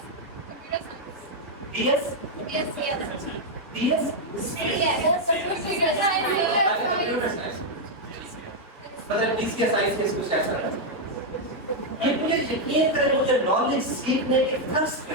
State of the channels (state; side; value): normal; both; correlation -0.01